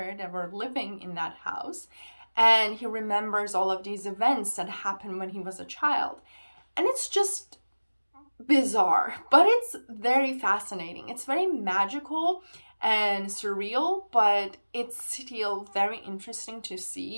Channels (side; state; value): both; inverted; correlation -1.00